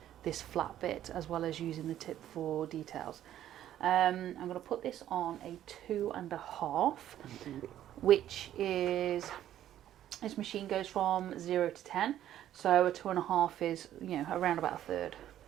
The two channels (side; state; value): left; quieter; 11.8 dB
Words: this flat bit as well as using the tip for details. I'm going to put this on a 2.5, which is... This machine goes from 0 to 10, so a 2.5 is, around about a third.